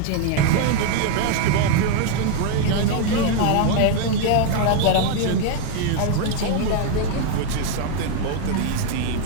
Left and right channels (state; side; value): different; both; correlation 0.01